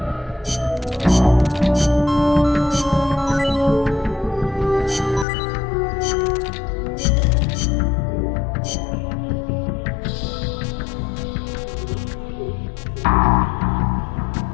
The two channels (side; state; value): right; drops out; at 5.2 s